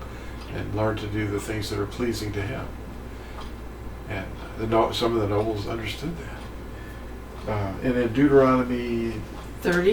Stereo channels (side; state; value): both; identical; correlation 1.00